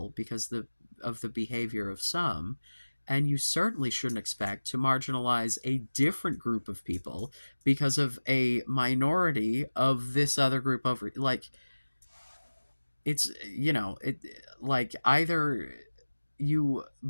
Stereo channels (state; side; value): inverted; both; correlation -1.00